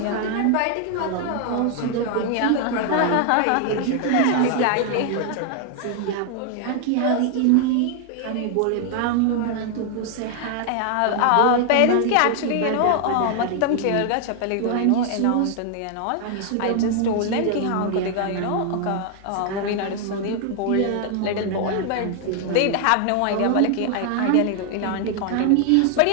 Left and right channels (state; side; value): different; both; correlation 0.00